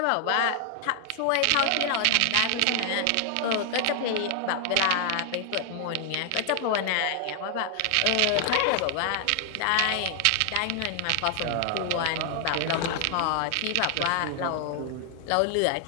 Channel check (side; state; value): both; different; correlation 0.00